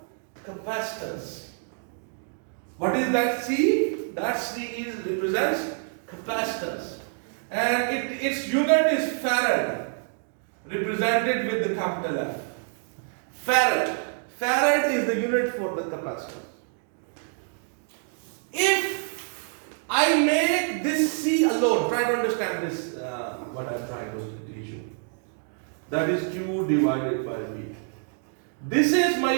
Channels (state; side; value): silent; left; 56 dB below the other